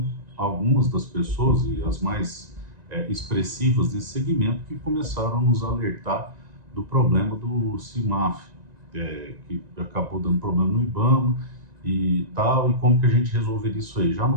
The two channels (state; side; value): late; left; 1.9 ms